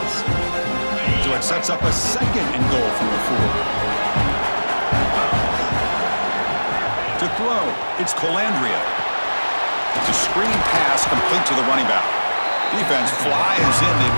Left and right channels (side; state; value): both; inverted; correlation -1.00